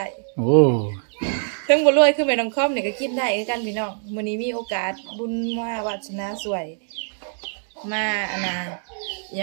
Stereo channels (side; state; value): left; silent; digital silence